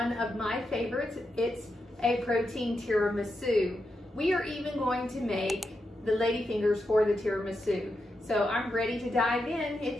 of my favorites. It's a protein tiramisu. We are even going to make the ladyfingers for the tiramisu. So I'm ready to dive in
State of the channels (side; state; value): both; normal; correlation 0.86